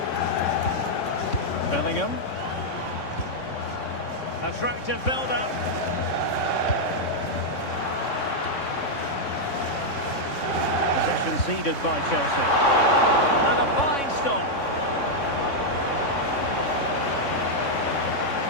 Bellingham. Attractive build-up. Possession ceded by Chelsea. And a fine stop.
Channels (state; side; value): late; right; 3.6 ms